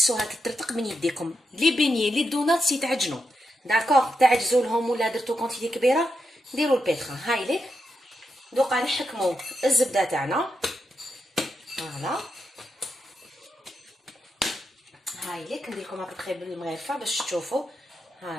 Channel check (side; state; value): both; normal; correlation 0.85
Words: تترتق من يديكم. لي بيني لي دوناتس يتعجنوا داكوغ، تعجزوا لهم ولا درتو كونتيتي كبيره ديروا البيتخا. هايليك دوكا نحكموا الزبده تاعنا. فوالا هايليك ندير لكم ابخي بالمغرفه باش تشوفوا.